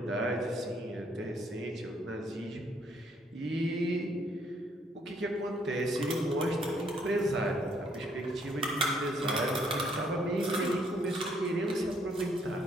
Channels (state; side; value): normal; both; correlation 0.68